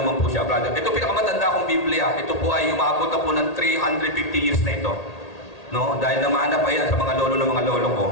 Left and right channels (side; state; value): right; late; 1.8 ms